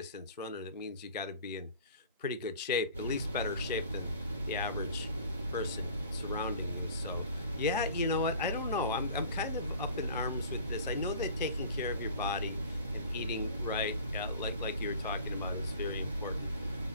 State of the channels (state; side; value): inverted; both; correlation -0.45